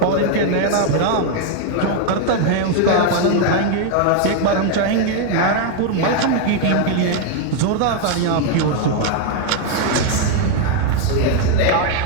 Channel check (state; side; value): different; both; correlation 0.01